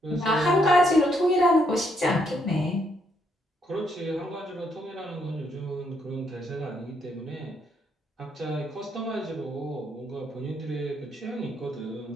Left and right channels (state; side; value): normal; both; correlation 0.74